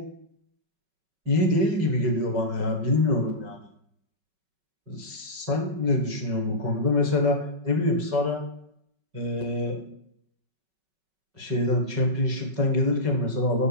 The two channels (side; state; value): left; late; 5.3 ms